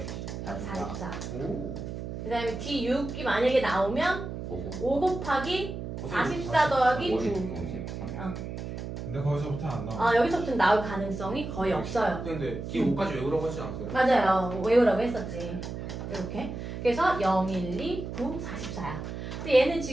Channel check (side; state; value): right; noise; hum, 7 dB below the sound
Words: 44. 오. 그 다음에 D6이 만약에 나오면 5 곱하기 44 더하기 9. 53. 근데 거기서부터 안 나와. 여기서부터 나올 가능성이 거의 없어요. 근데 D5까지 외우라고 하지 않았어요? 맞아요. 외우라고 했었지. 이렇게. 그래서 0, 1, 2, 9, 44야. 근데 얘는